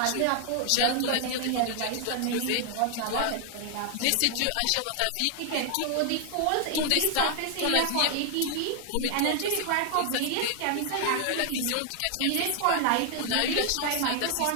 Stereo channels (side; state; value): both; different; correlation 0.00